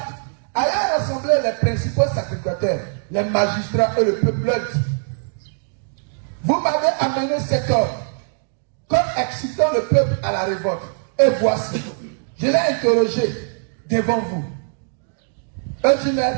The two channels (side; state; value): left; silent; digital silence